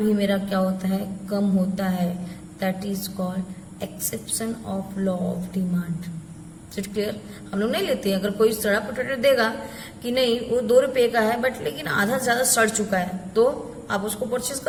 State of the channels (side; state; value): both; identical; correlation 1.00